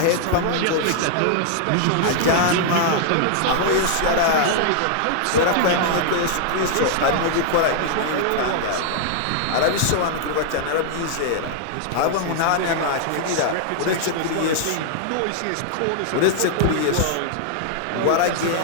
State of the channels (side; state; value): both; different; correlation 0.00